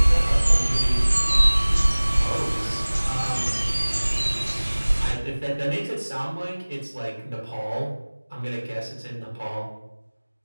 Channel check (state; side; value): inverted; both; correlation -1.00